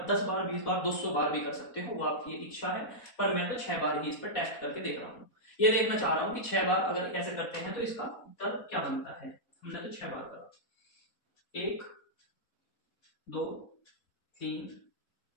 10 बार, 20 बार, 200 बार भी कर सकते हो, वो आपकी इच्छा है, पर मैं तो 6 बार ही इस पर टेस्ट करके देख रहा हूँ। ये देखना चाह रहा हूँ कि 6 बार अगर ऐसे करते हैं तो इसका उत्तर क्या बनता है। हमने तो 6 बार करा, 1 2 3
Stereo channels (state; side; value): late; right; 4.1 ms